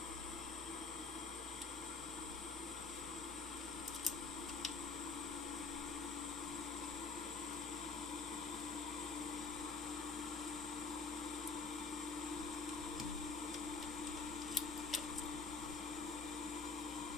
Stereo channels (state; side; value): quieter; right; 4.3 dB